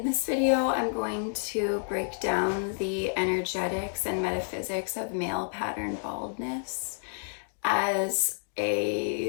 this video I'm going to break down the energetics and metaphysics of male pattern baldness as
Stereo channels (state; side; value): silent; right; digital silence